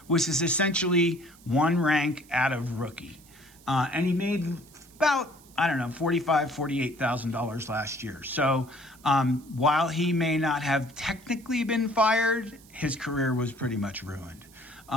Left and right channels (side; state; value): right; noise; hiss, 25 dB below the sound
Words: which is essentially one rank out of rookie. And he made about, I don't know, $45,000, $48,000 last year. So while he may not have technically been fired, his career was pretty much ruined.